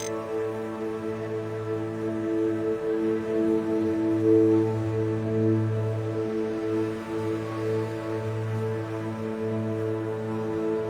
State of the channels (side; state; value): both; identical; correlation 1.00